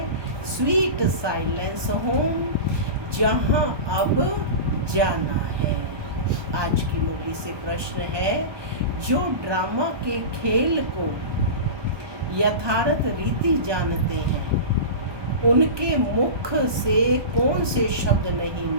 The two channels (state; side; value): late; left; 1.2 ms